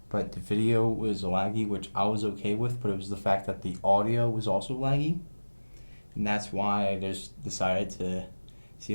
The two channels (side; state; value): both; inverted; correlation -1.00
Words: but the video was laggy, which I was okay with, but it was the fact that the audio was also laggy, and that's why I just decided to see